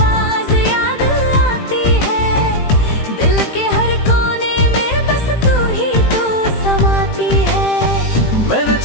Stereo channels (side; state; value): right; late; 18 ms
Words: याद आती है। दिल के हर कोने में बस तू ही तू समाती है। मैंने